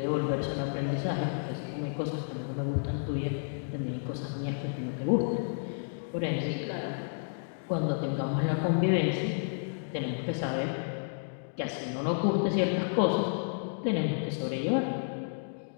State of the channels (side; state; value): right; silent; digital silence